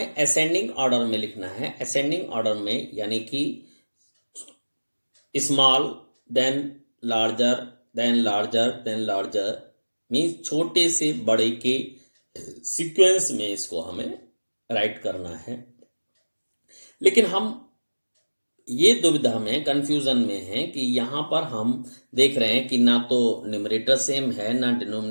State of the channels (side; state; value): both; inverted; correlation -1.00